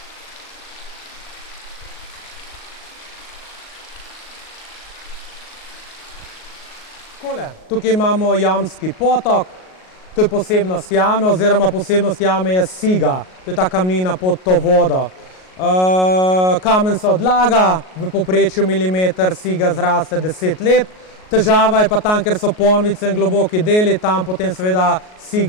Tukaj imamo jamski potok, to je posebnost jame, oziroma posebnost jame je siga, to je ta kamnina pod to vodo. Kamen se odlaga, v povprečju milimeter siga zraste 10 let. Težava je pa tam, ker so ponvice in globoki deli, tam potem seveda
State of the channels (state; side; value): late; right; 38 ms